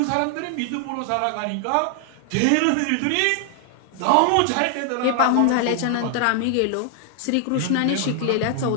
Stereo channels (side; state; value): both; different; correlation 0.00